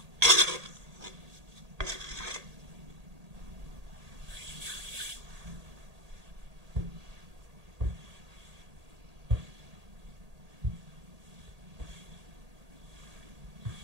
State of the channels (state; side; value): late; left; 1.8 ms